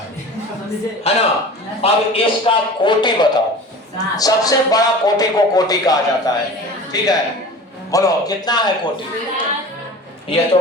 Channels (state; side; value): normal; both; correlation 0.38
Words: है ना। अब इसका कोटि बताओ, सबसे बड़ा कोटि को कोटि कहा जाता है, ठीक है। बोलो कितना है कोटि? ये